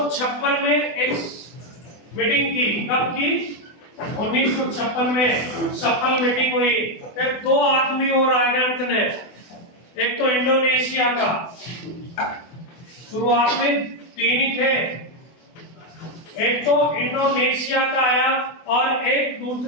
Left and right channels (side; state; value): right; late; 24 ms